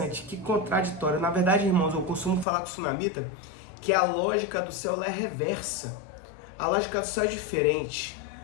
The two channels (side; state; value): right; drops out; at 2.5 s